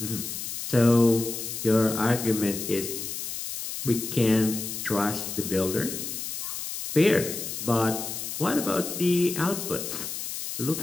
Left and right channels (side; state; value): left; noise; hiss, 6 dB below the sound